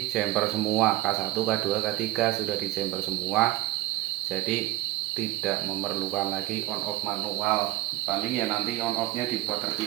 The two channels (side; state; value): left; quieter; 16.9 dB